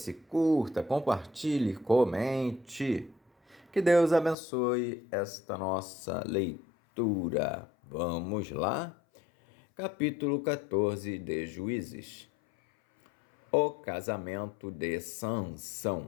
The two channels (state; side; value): drops out; right; at 4.4 s